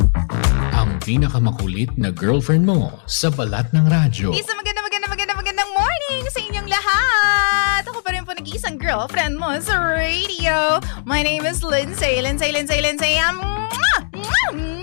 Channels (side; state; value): right; silent; digital silence